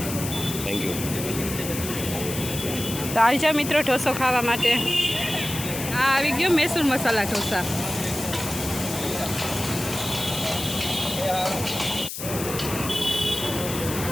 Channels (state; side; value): noise; left; hiss, 7 dB below the sound